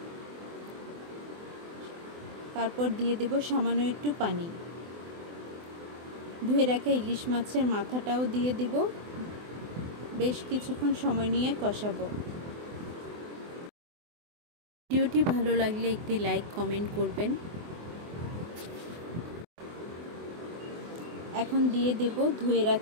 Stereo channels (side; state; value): left; late; 24 ms